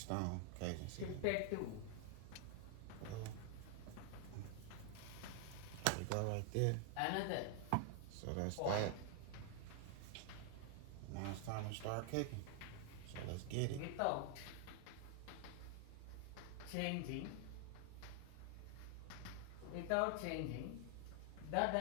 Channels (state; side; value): different; both; correlation 0.00